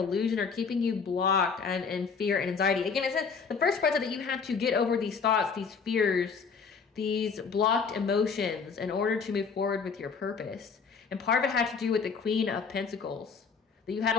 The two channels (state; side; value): quieter; right; 5.5 dB